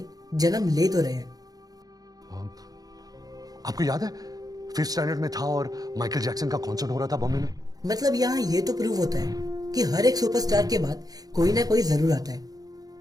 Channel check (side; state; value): left; late; 0.18 ms